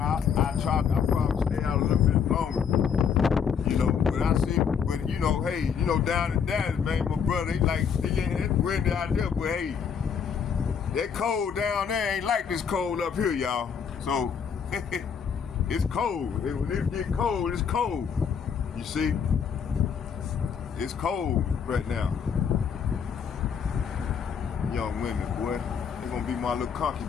probably stay out a little bit longer. You know, down in Dallas, man, my brother, it's windy out there, but hey, that cold down there ain't like this cold up here, y'all. So, it's cold. When it get cold, it's cold. You see? It's cold right now. Young women, boy. They're gonna be my little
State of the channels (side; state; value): right; quieter; 7.0 dB